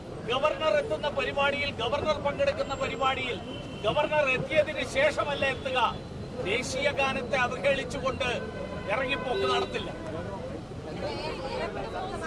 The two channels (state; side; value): identical; both; correlation 1.00